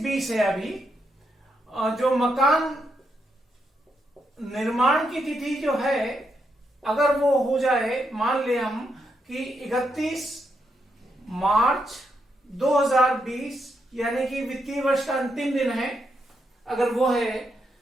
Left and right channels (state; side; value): normal; both; correlation 0.81